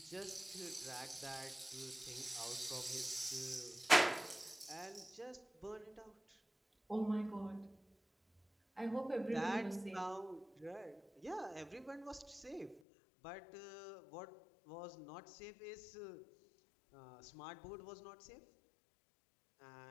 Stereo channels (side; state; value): right; drops out; at 12.8 s